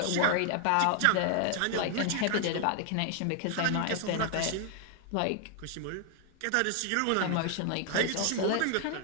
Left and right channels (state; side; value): different; both; correlation 0.00